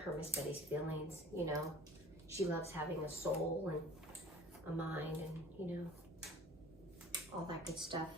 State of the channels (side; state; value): right; noise; hum, 21 dB below the sound